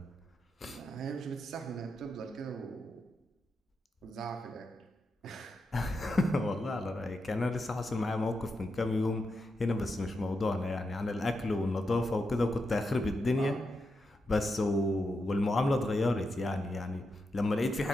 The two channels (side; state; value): both; normal; correlation 0.86